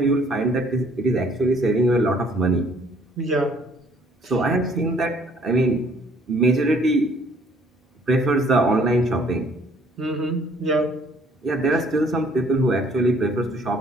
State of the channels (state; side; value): normal; both; correlation 0.60